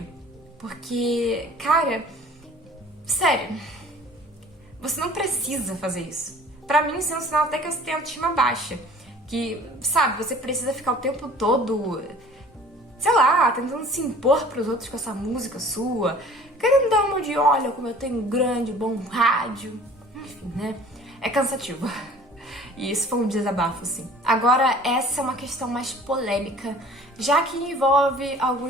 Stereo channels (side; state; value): both; normal; correlation 0.49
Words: Porque, cara, sério, você não precisa fazer isso. Pra mim, isso é um sinal até que você tem autoestima baixa. Que, sabe, você precisa ficar o tempo todo, sei lá, tentando se impor pros outros com essa música sua. Querendo dar uma de, olha como eu tenho um grande, bom rádio. Enfim, né? É cansativo. E isso foi um desabafo, sim. Agora, essa é uma questão mais polêmica, já que envolve